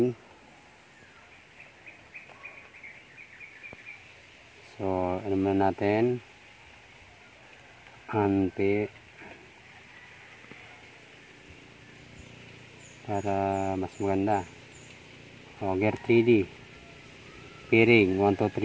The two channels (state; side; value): identical; both; correlation 1.00